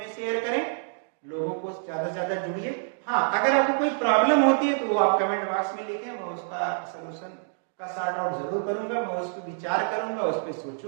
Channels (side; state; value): left; silent; digital silence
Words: शेयर करें, लोगों को ज्यादा से ज्यादा जुड़िए। हाँ, अगर आपको कोई प्रॉब्लम होती है तो वो आप कमेंट बॉक्स में लिखें, मैं उसका सोल्यूशन का सॉर्ट आउट जरूर करूंगा, मैं उस पर विचार करूंगा, उस पर